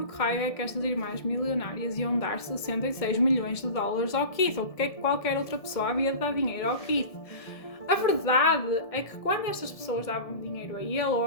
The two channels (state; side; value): late; right; 1.7 ms